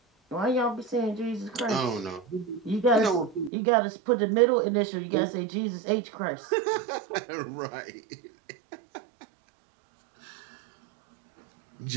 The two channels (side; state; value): left; drops out; at 3.5 s